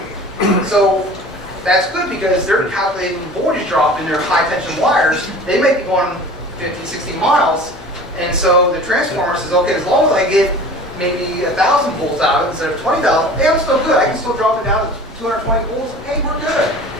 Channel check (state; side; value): normal; both; correlation 0.41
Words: So that's good because they're calculating voltage drop in their high tension wires. They may be going 50, 60 miles. And so the transformer says, okay, as long as I get maybe 1,000 volts out of it instead of 20,000, hey, I'm still good. I can still drop it down to 220 volts. Hey, we're good.